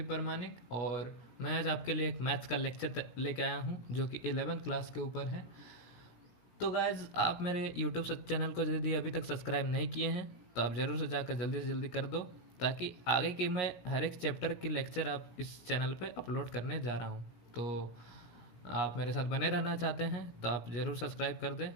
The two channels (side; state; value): right; late; 17 ms